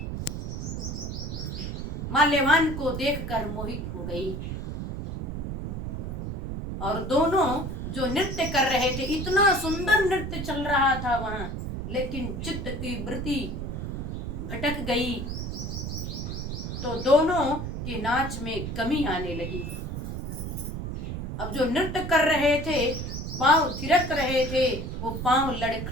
माल्यवान को देखकर मोहित हो गई, और दोनों जो नृत्य कर रहे थे, इतना सुंदर नृत्य चल रहा था वहां, लेकिन चित्त की वृत्ति भटक गई तो दोनों के नाच में कमी आने लगी। अब जो नृत्य कर रहे थे, पांव थिरक रहे थे, वो पांव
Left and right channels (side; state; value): right; noise; rumble, 5 dB below the sound